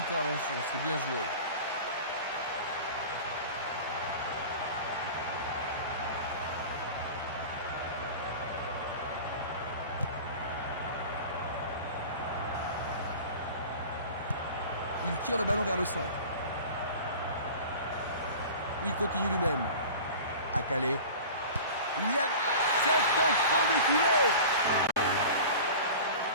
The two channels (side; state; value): both; inverted; correlation -0.37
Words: c'est bien joué. Il tire le ballon vers le centre. Il continue lui-même. À Calais. Il y a... C'est au fond des filets.